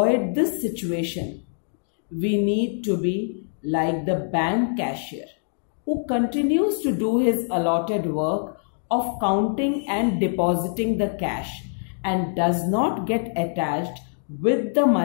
this situation, we need to be like the bank cashier who continues to do his allotted work of counting and depositing the cash and does not get attached with the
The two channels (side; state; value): right; silent; digital silence